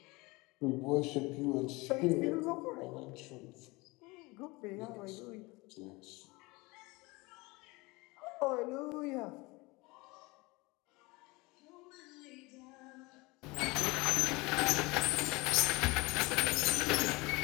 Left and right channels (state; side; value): quieter; right; 24.0 dB